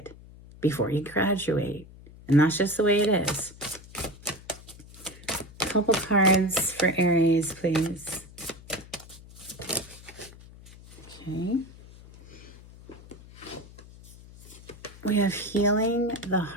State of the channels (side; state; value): left; noise; hum, 19 dB below the sound